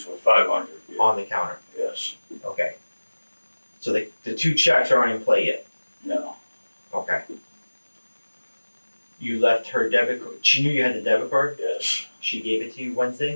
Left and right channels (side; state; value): both; inverted; correlation -1.00